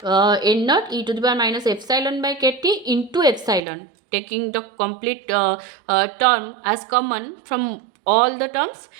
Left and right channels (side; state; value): left; drops out; at 3.6 s